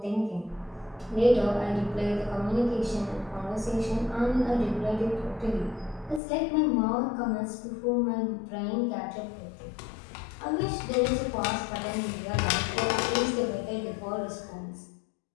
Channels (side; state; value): right; drops out; at 6.2 s